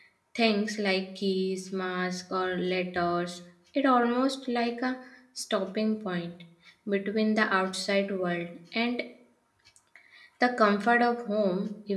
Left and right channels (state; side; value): identical; both; correlation 1.00